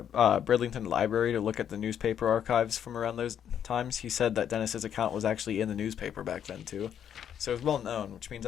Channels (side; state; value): right; quieter; 9.1 dB